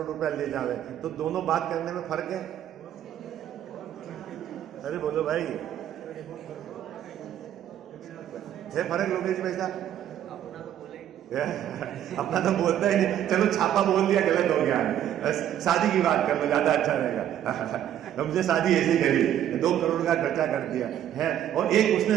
रुपया ले जावे, तो दोनों बात करने में फर्क है? अरे बोलो भाई, है फर्क लोकेश भाई साहब? अपना तो बोलता ही नहीं। चलो छापा बोल दिया, गलत हो गया। शादी की बात कर लो, ज्यादा अच्छा रहेगा। हमसे शादी ऐसी करी, 2 करोड़ का खर्चा कर दिया है, और एक उसने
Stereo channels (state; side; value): quieter; left; 10.9 dB